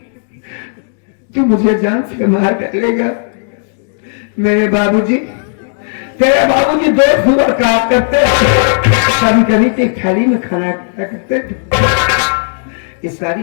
तू मुझे जान से मार डालेगा। मेरे बाबूजी, तेरे बाबूजी दोस्त हुआ कहा करते, कभी कभी तो थाली में खाना खाया करते। ये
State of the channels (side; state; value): right; silent; 70 dB below the other